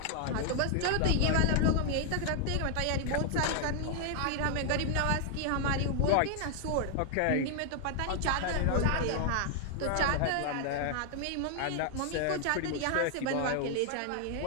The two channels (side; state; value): both; different; correlation 0.00